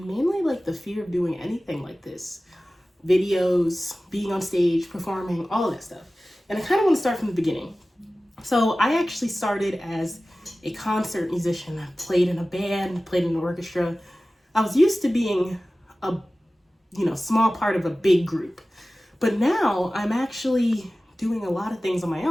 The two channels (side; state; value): both; normal; correlation 0.96